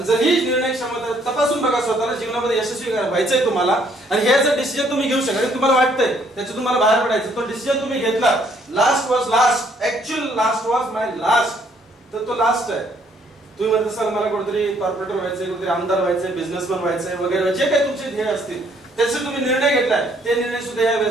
जर ही निर्णय क्षमता तपासून बघा स्वतःला, जीवनामध्ये यशस्वी व्हायचंय तुम्हाला, आणि हे जर डिसिजन तुम्ही घेऊ शकता, तुम्हाला वाटतंय त्याच्यातून तुम्हाला बाहेर पडायचं, तो डिसिजन तुम्ही घेतला, last was last, actual last was my last, तर तो लास्ट आहे. तुम्ही म्हणता सर मला कुठेतरी कॉर्पोरेटर व्हायचंय, कुठेतरी आमदार व्हायचंय, बिझनेसमॅन व्हायचंय वगैरे, जे काही तुमचे ध्येय असतील त्याचे तुम्ही निर्णय घेतलाय, ते निर्णय सुद्धा या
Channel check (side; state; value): both; normal; correlation 0.66